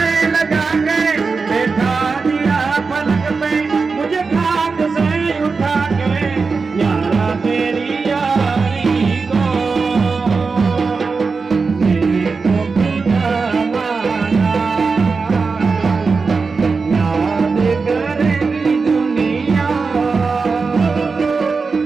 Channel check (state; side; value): quieter; left; 4.6 dB